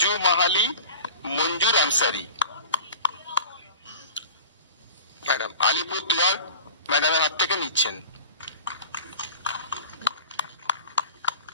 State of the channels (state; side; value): inverted; both; correlation -0.39